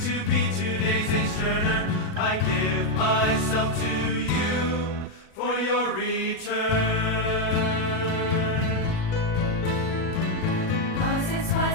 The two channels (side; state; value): right; late; 37 ms